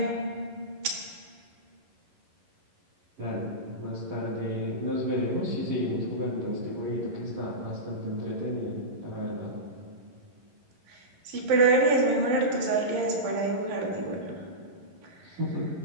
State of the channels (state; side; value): late; left; 11 ms